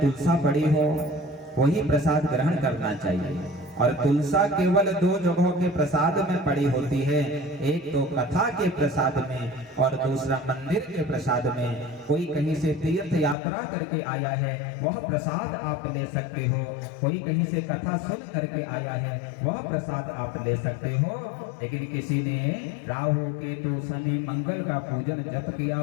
पड़ी हो वही प्रसाद ग्रहण करना चाहिए। और तुलसा केवल दो जगहों के प्रसाद में पड़ी होती है, एक तो कथा के प्रसाद में और दूसरा मंदिर के प्रसाद में। कोई कहीं से तीर्थ यात्रा करके आया है वह प्रसाद आप ले सकते हो, कोई कहीं से कथा सुन करके आया है वह प्रसाद आप ले सकते हो। लेकिन किसी ने राहु केतु शनि मंगल का पूजन जप किया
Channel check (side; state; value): right; drops out; at 13.4 s